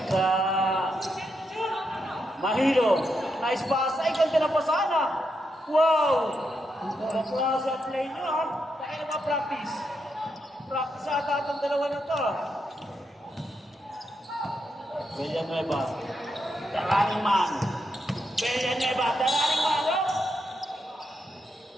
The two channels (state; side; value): normal; both; correlation 0.83